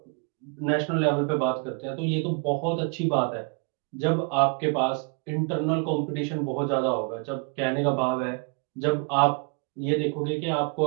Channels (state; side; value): quieter; left; 36.8 dB